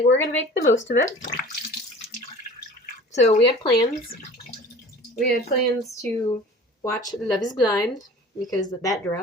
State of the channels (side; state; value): both; normal; correlation 0.43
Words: we're gonna make the most of it. So, we had plans. We had plans to watch Love is Blind, because that